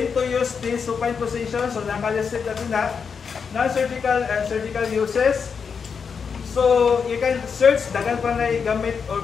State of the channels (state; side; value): quieter; right; 6.1 dB